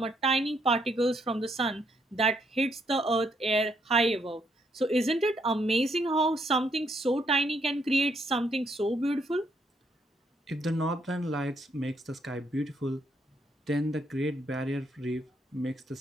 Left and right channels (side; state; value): both; normal; correlation 0.73